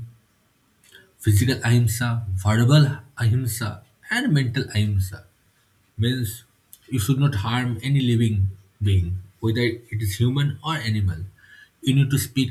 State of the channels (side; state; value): both; identical; correlation 1.00